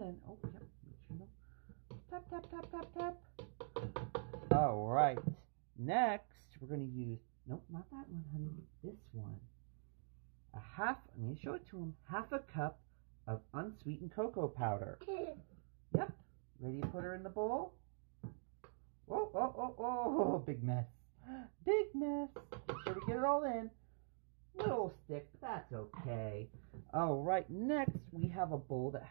Oh, yep. Make sure you tap, tap, tap, tap, tap. All right. Next, we're going to use, nope, not that one, honey. This one. I need to show it to him. 1/2 cup of unsweetened cocoa powder. Yep. Ready to put her in the bowl? Oh, oh, oh, oh, big mess. Big mess. Make sure we get it all in. Little stick, but that's okay. All right, next we have a bowl that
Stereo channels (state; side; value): silent; left; digital silence